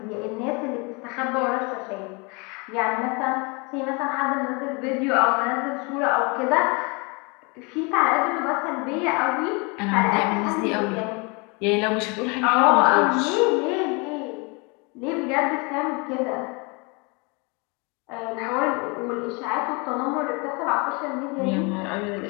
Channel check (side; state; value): right; quieter; 30.2 dB